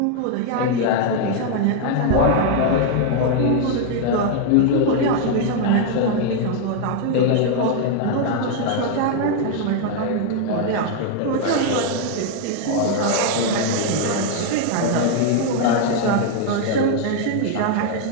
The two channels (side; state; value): both; different; correlation 0.00